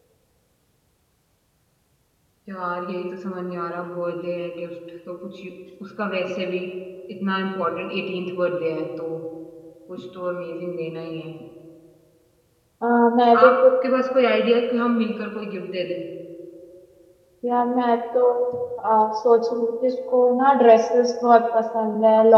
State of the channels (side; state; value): both; identical; correlation 1.00